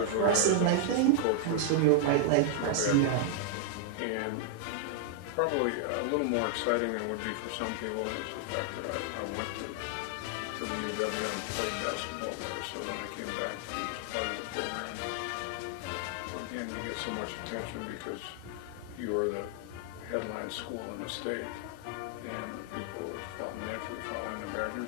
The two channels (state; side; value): different; both; correlation 0.00